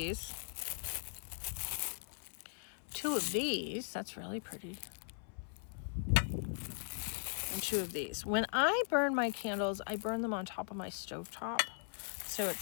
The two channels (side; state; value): right; silent; 52 dB below the other